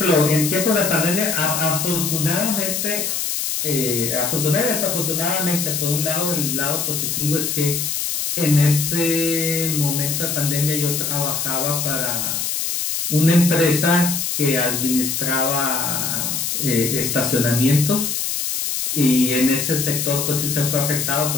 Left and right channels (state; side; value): noise; left; hiss, 1 dB below the sound